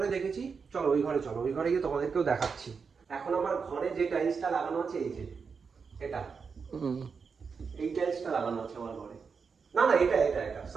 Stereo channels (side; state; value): left; quieter; 5.5 dB